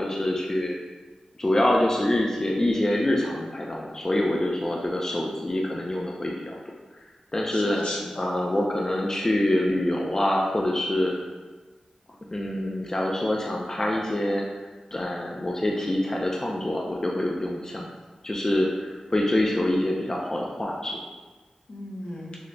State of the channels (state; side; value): normal; both; correlation 0.95